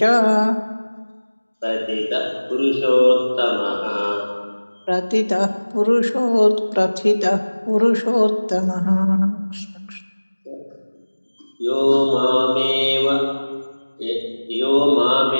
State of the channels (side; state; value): both; inverted; correlation -1.00